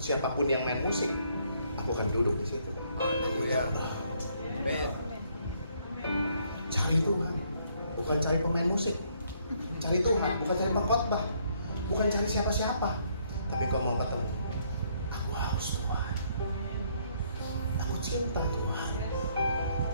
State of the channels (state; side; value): inverted; both; correlation -0.68